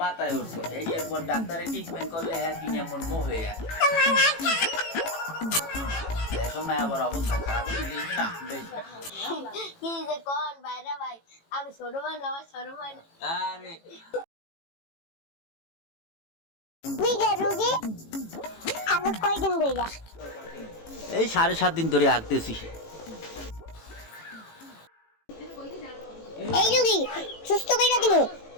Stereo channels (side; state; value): right; late; 18 ms